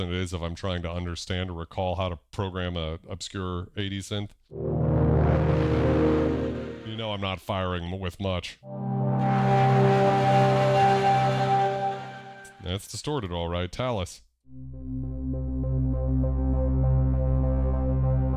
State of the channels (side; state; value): both; identical; correlation 1.00